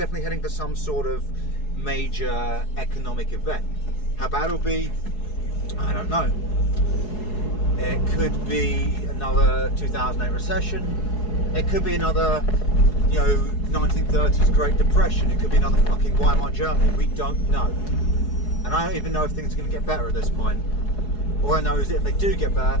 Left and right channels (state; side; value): late; right; 4.7 ms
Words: heading for some sort of major economic event. How bad it'll be, I don't know. It could be another 2008 recession. It could be another, 1930s Great Depression. It could be another fucking Weimar Germany. We don't know. And I don't even know if things are going to get better at this point. All I know is that if they do get